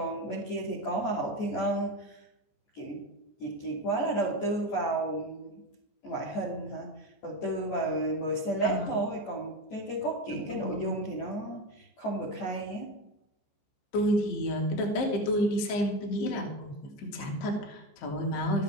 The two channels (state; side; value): late; right; 15 ms